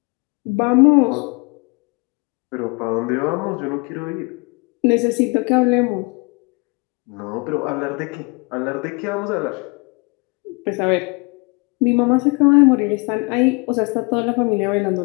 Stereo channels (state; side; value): quieter; right; 29.4 dB